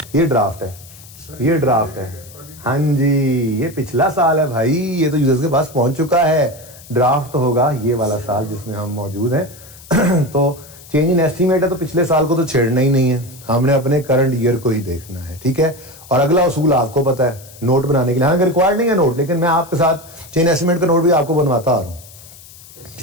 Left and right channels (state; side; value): noise; left; hiss, 20 dB below the sound